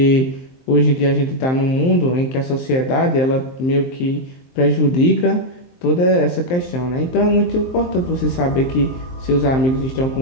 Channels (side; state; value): right; late; 23 ms